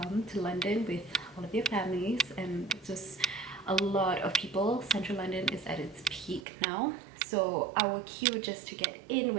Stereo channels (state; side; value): drops out; left; at 6.5 s